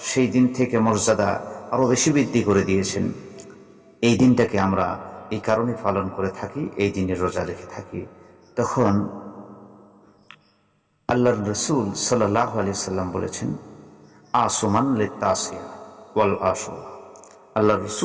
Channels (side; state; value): both; identical; correlation 1.00